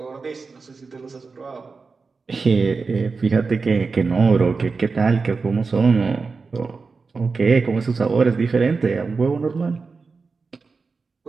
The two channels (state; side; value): quieter; left; 4.5 dB